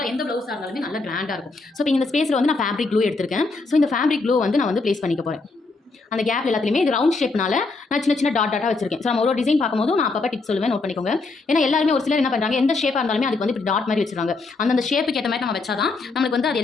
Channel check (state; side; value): quieter; right; 3.7 dB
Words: எந்த ப்ளவுஸாக இருந்தாலுமே நல்லா கிராண்டாக இருக்கும். ஸோ இப்போ இந்த ஸ்பேஸில் வந்து நான் ஃபேப்ரிக் க்ளூ எடுத்திருக்கேன். ஸோ இந்த ஃபேப்ரிக் க்ளூ வந்து நான் வந்து ப்ளேஸ் பண்ணிக்க போகிறேன். அந்த கேப் எல்லாத்துலேயுமே இது ரவுண்ட் ஷேப்னால நான் சின்ன சின்ன டாட்டாக வச்சிருக்கேன். ஸோ நம்ம ஒரு டிசைன் பார்க்கும்போது நான் அப்போ டிப்ஸ் சொல்லுவேன், நோட் பண்ணிக்கோங்க. ஏன்னா எல்லாருமே ஒரு சிலர் என்ன பண்ணுறாங்க, எந்த ஷேப்பாக இருந்தாலுமே அதுக்கு வந்து இப்படி டாட் மாதிரி வச்சிருக்காங்க. அந்த ஷேப்புக்கு ஏற்ற மாதிரி நம்ம வச்சாதான் நம்மளுக்கு வந்து அது